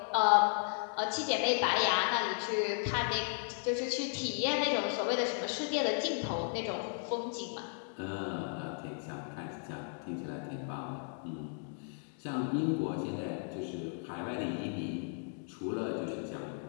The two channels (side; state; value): right; silent; 54 dB below the other